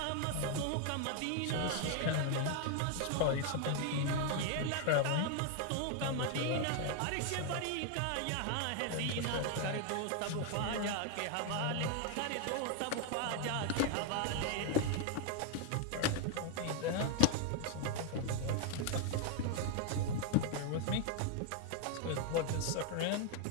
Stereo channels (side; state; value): both; different; correlation 0.00